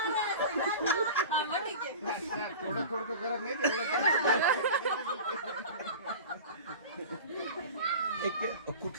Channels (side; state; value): both; inverted; correlation -0.35